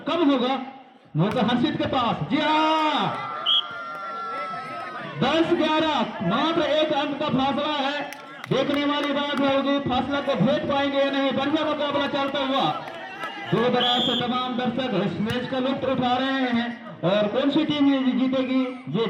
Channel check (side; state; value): both; identical; correlation 1.00